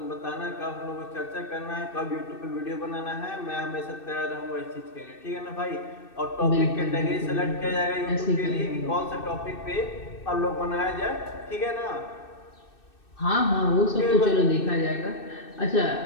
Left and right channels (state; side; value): late; right; 2.6 ms